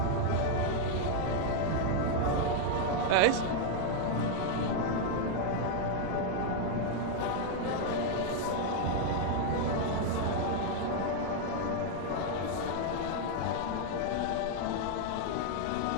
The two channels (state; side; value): different; both; correlation 0.00